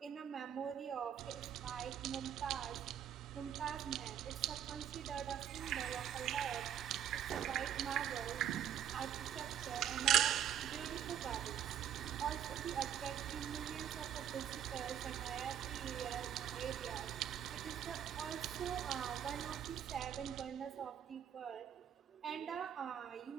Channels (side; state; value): left; quieter; 9.8 dB